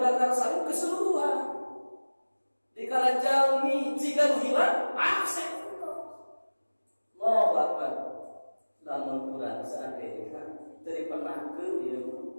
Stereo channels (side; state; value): both; inverted; correlation -1.00